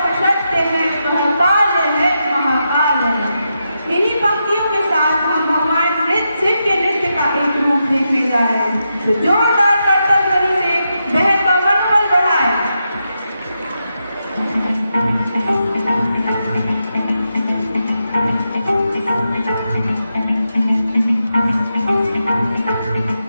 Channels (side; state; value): both; inverted; correlation -0.86